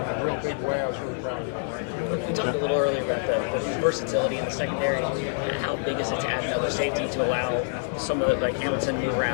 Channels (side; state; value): right; silent; digital silence